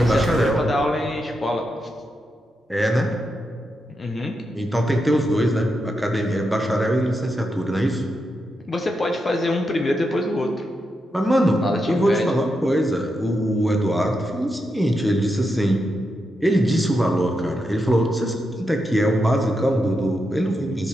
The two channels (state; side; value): normal; both; correlation 0.85